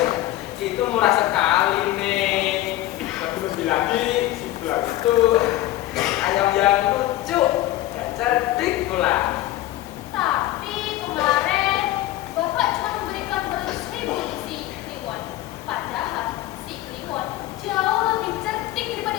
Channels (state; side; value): quieter; right; 15.3 dB